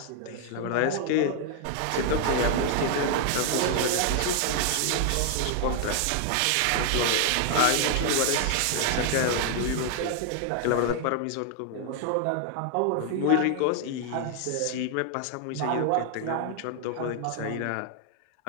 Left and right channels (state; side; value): different; both; correlation 0.00